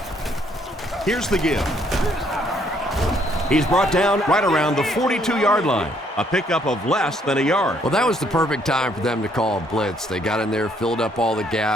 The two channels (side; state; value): both; normal; correlation 0.67